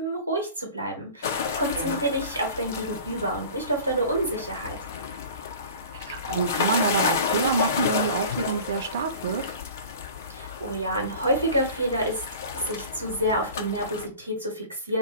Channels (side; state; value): both; inverted; correlation -0.40